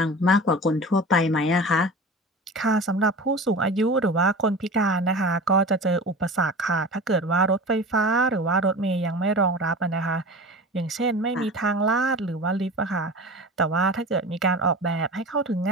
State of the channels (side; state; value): both; normal; correlation 0.34